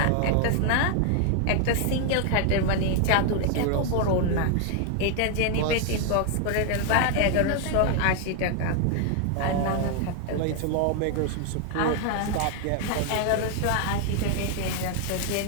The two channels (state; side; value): different; both; correlation 0.00